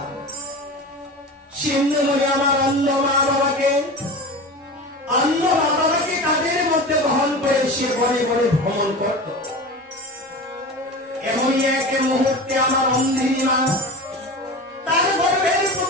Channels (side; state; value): both; normal; correlation 0.31